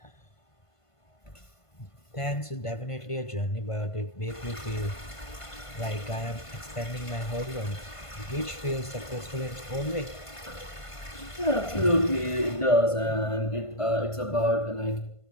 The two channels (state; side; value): late; right; 1.5 ms